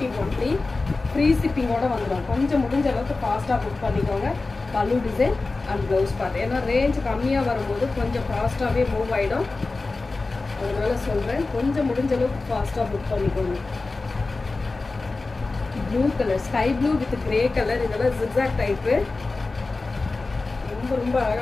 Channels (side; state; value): right; quieter; 3.6 dB